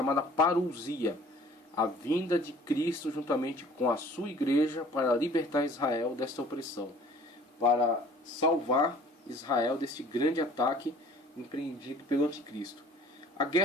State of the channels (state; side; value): normal; both; correlation 0.51